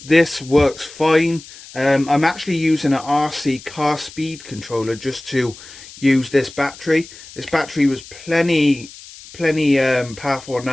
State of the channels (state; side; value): noise; left; hiss, 18 dB below the sound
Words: This works fine. I'm actually using an RC car speed controller just to use this battery. This battery was plenty powerful